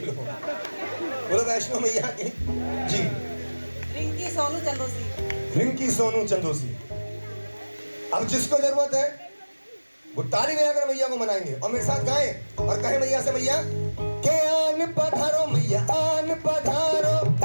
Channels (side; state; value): both; inverted; correlation -1.00